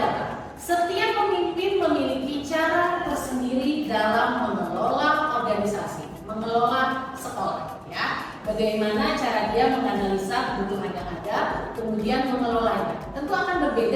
setiap pemimpin memiliki cara tersendiri dalam mengelola organisasi, mengelola sekolah, ya. Bagaimana cara dia menganalisa kebutuhan yang ada, kemudian mengelolanya. Tentu akan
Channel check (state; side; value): identical; both; correlation 1.00